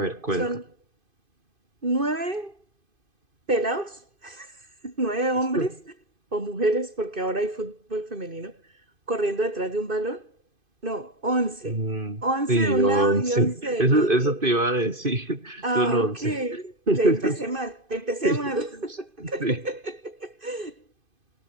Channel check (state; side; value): late; left; 2.5 ms